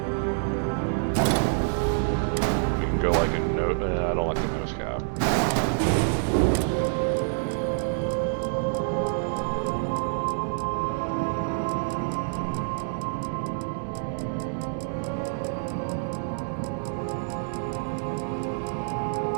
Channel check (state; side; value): silent; left; digital silence